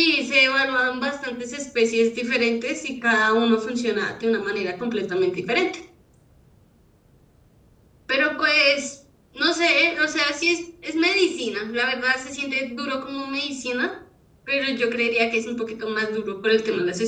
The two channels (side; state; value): both; identical; correlation 1.00